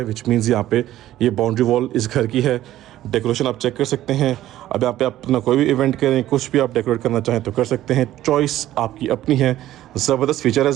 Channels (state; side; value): quieter; left; 13.8 dB